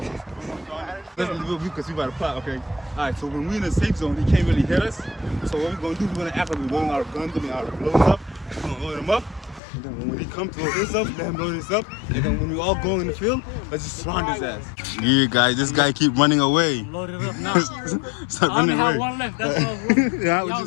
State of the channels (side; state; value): right; drops out; at 9.6 s